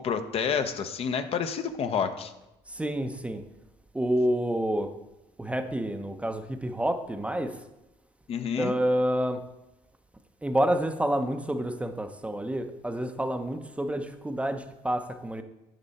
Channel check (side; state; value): both; normal; correlation 0.80